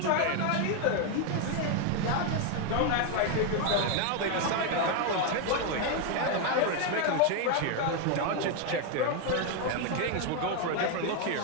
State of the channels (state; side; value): different; both; correlation 0.01